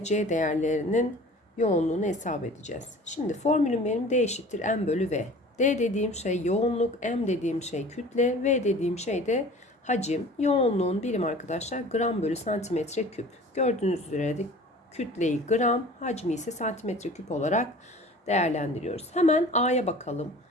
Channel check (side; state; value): both; normal; correlation 0.44